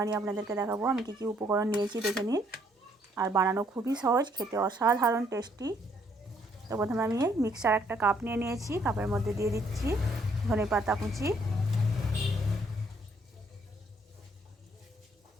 আপনাদেরকে দেখাবো। আমি কী কী উপকরণ নিয়েছি দেখে নিন। আর বানানো খুবই সহজ, খেতে অসাধারণ টেস্টি। তো প্রথমে আমি মিক্সার একটা কাপ নিয়ে নিয়েছি, কাপের মধ্যে দিয়ে দিচ্ছি ধনেপাতা কুচি।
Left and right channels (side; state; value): both; normal; correlation 0.68